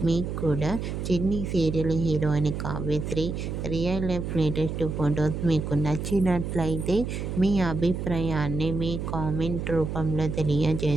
మీకు కూడా చిన్ని serial heroine Kavyasri real life latest photos మీకు నచ్చినట్లయితే మీ అభిప్రాయాన్ని మీ కామెంట్ రూపంలో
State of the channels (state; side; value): noise; right; hum, 4 dB below the sound